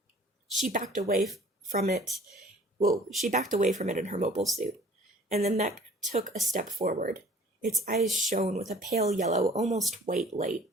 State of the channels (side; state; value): both; normal; correlation 0.51